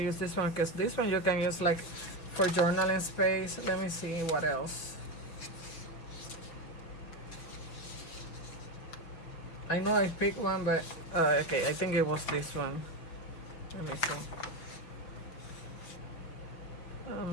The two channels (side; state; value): right; late; 5.9 ms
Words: this one because this one you can use like for journaling space. Let me see what else. I know I picked one, but okay, I think it was this one. Let me see.